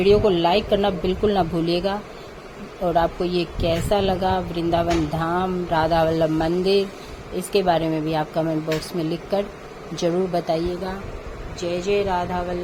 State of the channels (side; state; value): both; identical; correlation 1.00